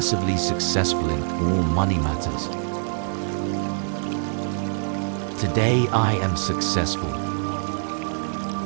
successful in all money matters. Today I am successful.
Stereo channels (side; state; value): left; silent; digital silence